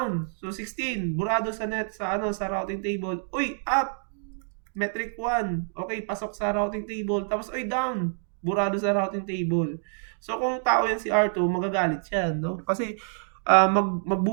So 16, burado sa sa routing table. Uy, up. Metric 1. Okay, pasok sa routing table. Tapos down. Burado sa routing table. So kung tao yan si R2, magagalit siya, no? Kasi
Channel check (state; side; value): silent; left; digital silence